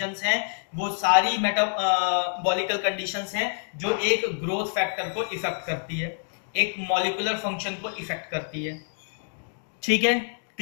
हैं, वो सारी मेटाबॉलिकल कंडीशंस हैं जो एक ग्रोथ फैक्टर को इफेक्ट करती है, एक मॉलिक्यूलर फंक्शन को इफेक्ट करती है। ठीक है,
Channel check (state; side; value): silent; right; digital silence